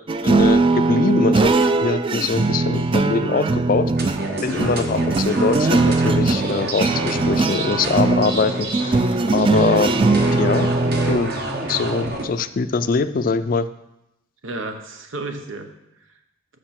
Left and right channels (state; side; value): normal; both; correlation 0.50